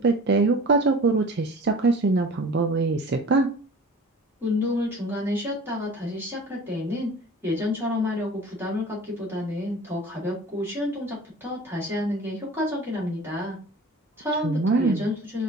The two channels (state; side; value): normal; both; correlation 0.42